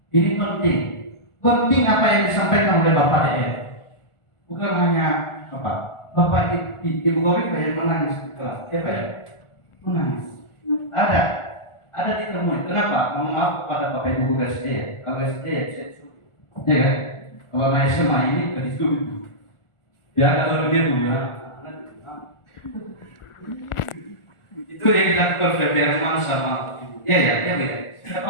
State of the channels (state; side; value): late; right; 1.4 ms